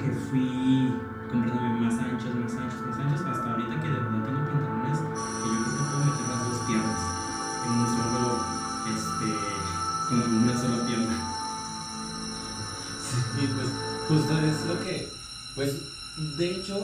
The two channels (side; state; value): both; identical; correlation 1.00